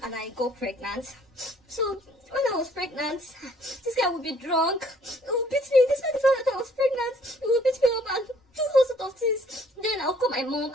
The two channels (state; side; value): normal; both; correlation 0.60